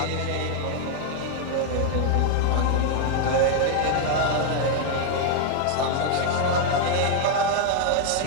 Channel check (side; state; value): both; different; correlation 0.00